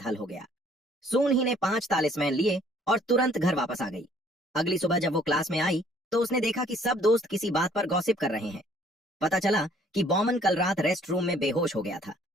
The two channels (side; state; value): both; normal; correlation 0.60